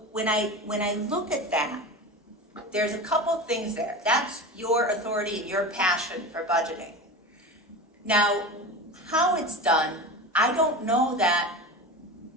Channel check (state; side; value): normal; both; correlation 0.28